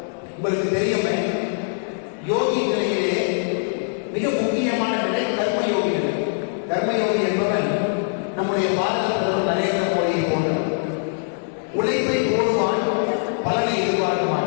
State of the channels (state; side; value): silent; right; digital silence